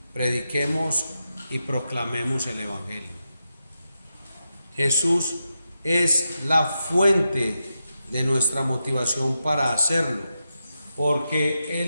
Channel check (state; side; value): inverted; both; correlation -0.88